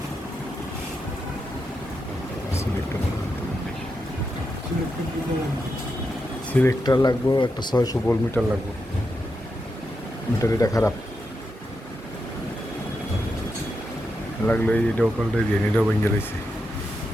সিলেক্টার লাগবো একটা, 600 ভোল্ট মিটার লাগবে। মিটার এটা খারাপ লাগলো, এটাও পাল্টে দিয়ে এটাও ভেঙে গেছে।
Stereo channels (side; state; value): both; normal; correlation 0.86